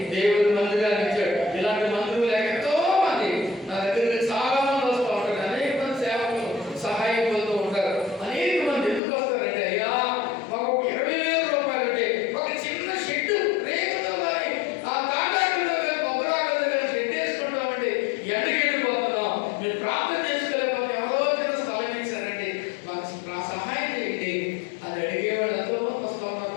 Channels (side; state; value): right; drops out; at 9.0 s